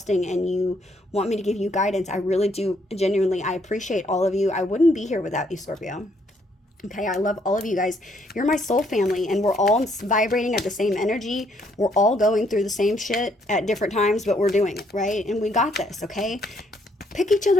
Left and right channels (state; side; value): normal; both; correlation 0.70